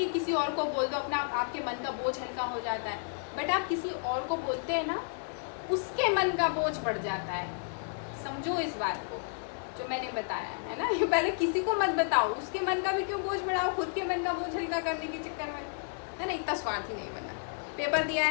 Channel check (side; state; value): right; silent; digital silence